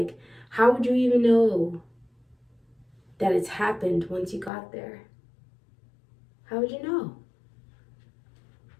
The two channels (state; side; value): drops out; right; at 4.5 s